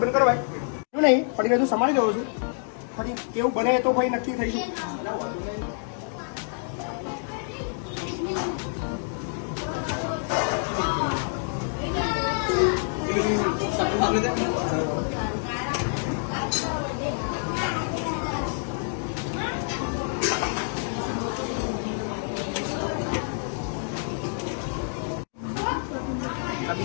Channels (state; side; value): silent; right; 60 dB below the other